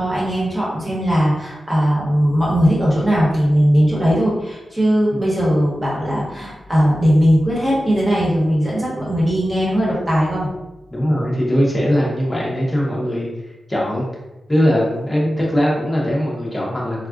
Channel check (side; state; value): both; normal; correlation 0.94